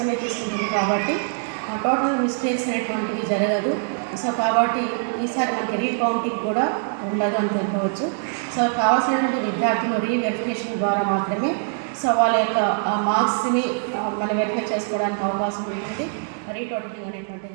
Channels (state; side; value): silent; left; digital silence